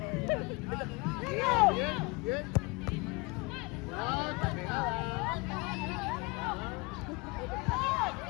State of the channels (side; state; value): right; quieter; 26.7 dB